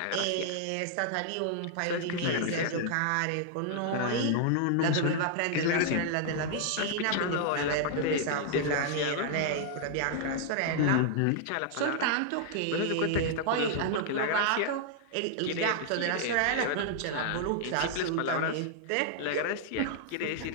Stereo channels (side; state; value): both; different; correlation -0.01